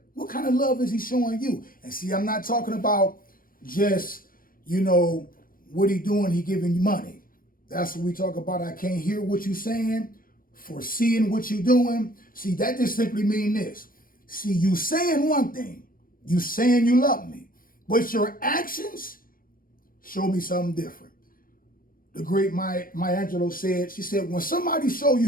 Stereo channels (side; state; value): right; late; 0.41 ms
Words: What kind of love is he showing you? And see, I'm not talking about just, what he doing, he giving you money. That's what we talk about. I can't hear what you saying, foreseeing what you doing. See, that just simply mean this. See, you saying one thing, you saying you love me, but your actions show me something different. The great Maya Angelou said, she said, when somebody show